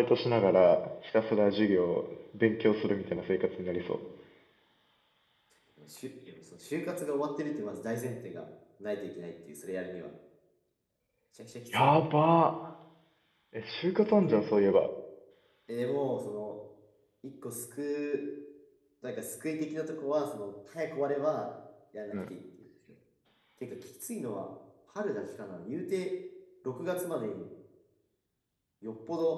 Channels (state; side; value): identical; both; correlation 1.00